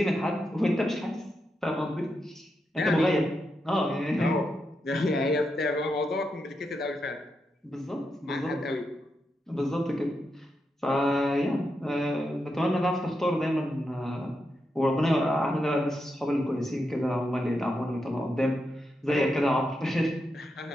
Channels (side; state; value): both; normal; correlation 0.85